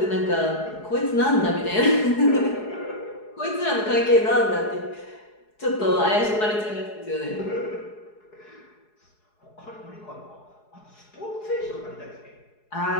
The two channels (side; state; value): right; late; 4.7 ms